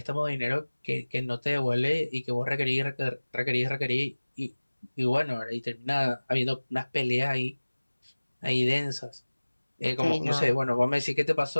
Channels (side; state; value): both; inverted; correlation -1.00